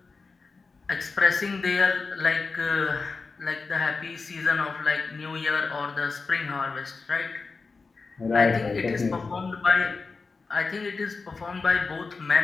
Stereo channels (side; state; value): right; quieter; 4.3 dB